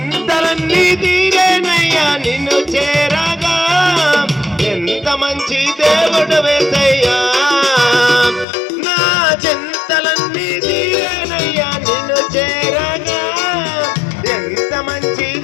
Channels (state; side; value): drops out; right; at 8.5 s